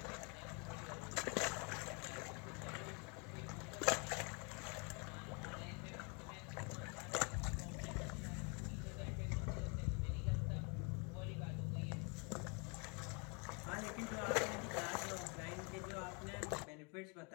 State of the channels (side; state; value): right; quieter; 33.7 dB